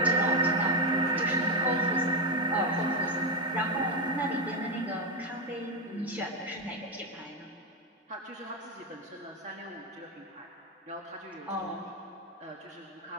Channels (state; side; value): normal; both; correlation 0.09